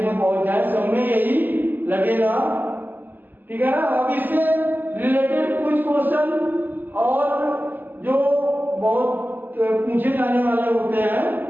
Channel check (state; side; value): late; left; 0.089 ms